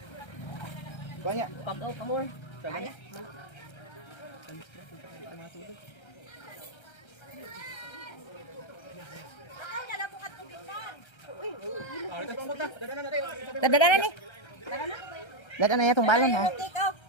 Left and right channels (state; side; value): late; right; 1.3 ms